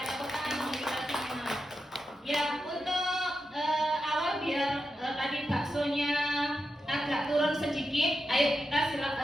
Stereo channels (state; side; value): normal; both; correlation 0.88